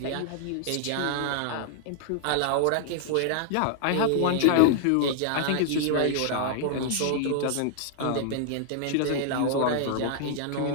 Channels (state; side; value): different; both; correlation 0.00